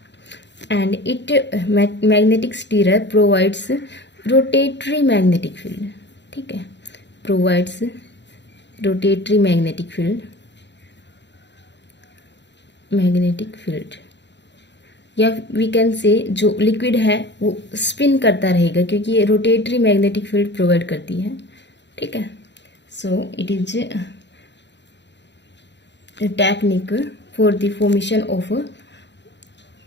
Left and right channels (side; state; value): right; late; 0.52 ms